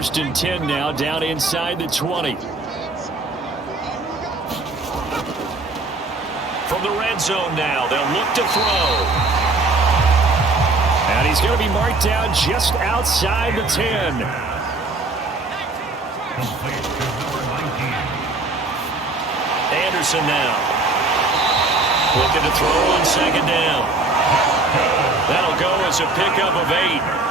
and 10 now, down inside the 20. From the red zone now, they'll look to throw. And he's going to be marked down just outside the 10. Anderson now. Looking to throw on 2nd down. That'll go as a pickup of 8.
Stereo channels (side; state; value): left; quieter; 3.3 dB